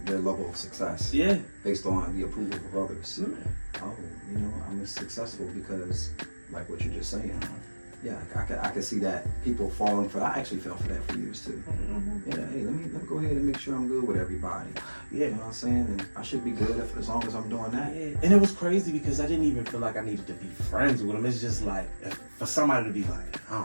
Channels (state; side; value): inverted; both; correlation -1.00